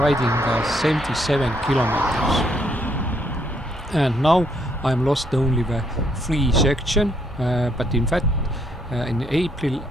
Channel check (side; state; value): both; normal; correlation 0.71